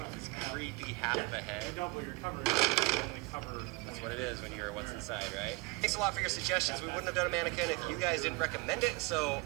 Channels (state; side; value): quieter; left; 25.6 dB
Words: this creepy half of a head. That's what it is when you're what's inside, right? Thanks a lot for your suggestions. We wouldn't have done a mannequin if you guys didn't recommend it, so